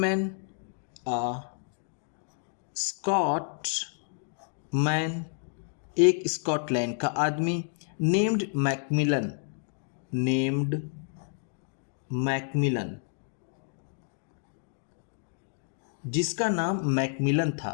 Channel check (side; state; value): right; silent; 58 dB below the other